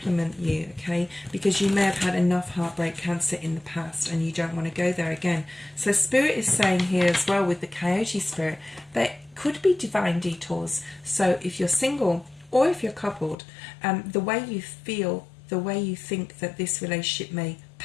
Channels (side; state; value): right; drops out; at 13.4 s